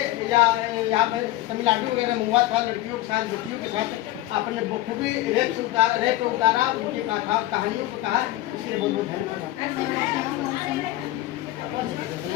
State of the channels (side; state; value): right; quieter; 16.2 dB